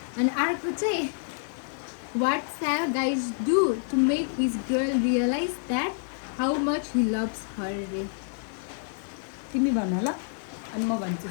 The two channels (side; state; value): right; silent; 59 dB below the other